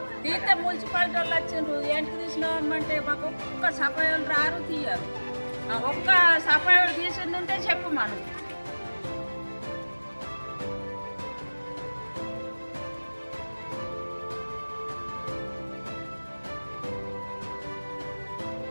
తీస్తే మున్సిపాలిటీ వాళ్ళు వచ్చిండ్రు, ఏంటికి తీసినామంటే మాకు ఒక్క సఫాయిలు రారు తీయరు. ఒక్క సఫాయిలు తీసింది ఉంటే చెప్పు మనం.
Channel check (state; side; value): inverted; both; correlation -1.00